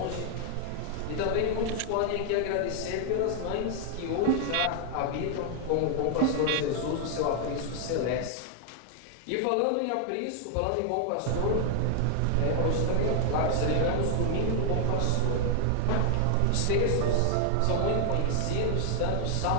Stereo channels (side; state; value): both; different; correlation 0.00